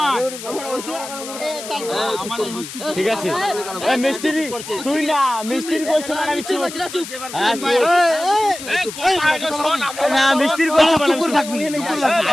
আমার হচ্ছে ঠিক আছে এ মিস্ত্রি তুই না মিস্ত্রি কইছ না আমি চুপ না মিস্ত্রি কইছ না চুপ করে থাকবি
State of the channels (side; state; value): left; noise; hiss, 11 dB below the sound